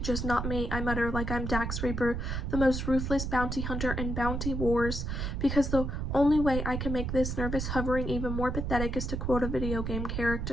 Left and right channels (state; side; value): noise; right; rumble, 2 dB below the sound